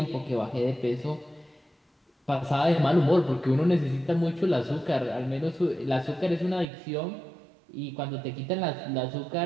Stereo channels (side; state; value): left; drops out; at 6.7 s